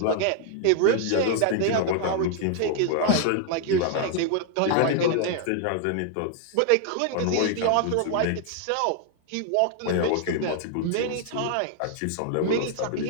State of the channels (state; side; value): different; both; correlation 0.00